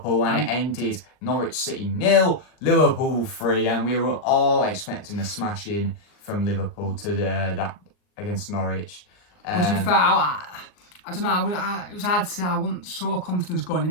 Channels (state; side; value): late; right; 39 ms